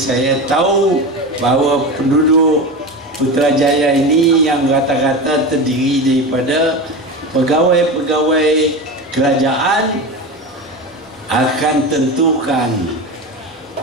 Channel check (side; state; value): both; normal; correlation 0.24